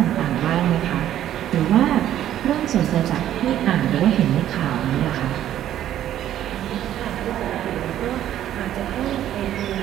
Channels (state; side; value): quieter; left; 11.7 dB